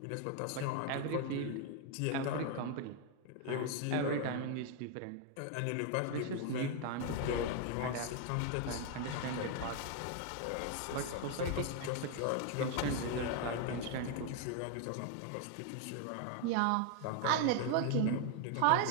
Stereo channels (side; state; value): both; different; correlation 0.00